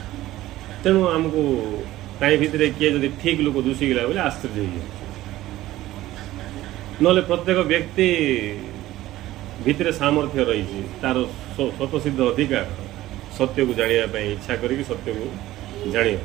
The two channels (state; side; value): quieter; left; 15.6 dB